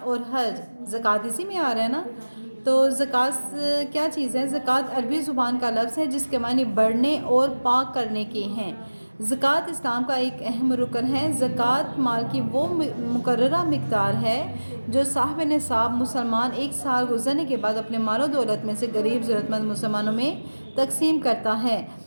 اور حج۔ زکوٰۃ اسی میں آ رہا ہے نا؟ تو زکوٰۃ کیا چیز ہے؟ زکوٰۃ عربی زبان کا لفظ ہے جس کے معنی بڑھنے اور پاک کرنے کے ہیں۔ زکوٰۃ اسلام کا ایک اہم رکن ہے۔ زکوٰۃ مال کی وہ مقررہ مقدار ہے جو صاحب نصاب مسلمان ایک سال گزرنے کے بعد اپنے مال و دولت میں سے غریب ضرورت مند مسلمانوں میں تقسیم کرتا ہے۔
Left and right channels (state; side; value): inverted; both; correlation -1.00